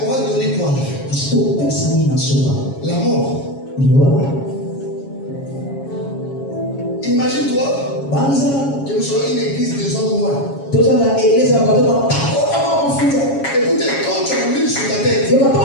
on va donner quoi? La mort. Imagine-toi que nous soyons une église de gens noirs. Écoutez, quand tu as l'huile sur ta tête,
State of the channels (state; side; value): late; right; 7.3 ms